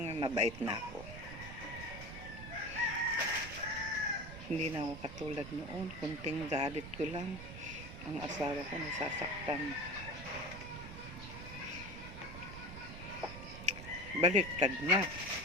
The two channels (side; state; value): right; noise; rumble, 11 dB below the sound